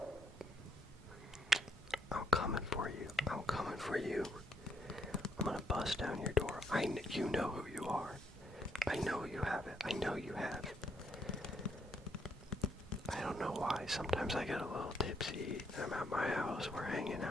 I'm coming for you. I'm coming for you. I'm gonna bust down your door. You know who you are. I know you have it. I know you have. I don't know why. Sometimes I get a little tipsy. I'm at my house. We're hanging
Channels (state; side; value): normal; both; correlation 0.72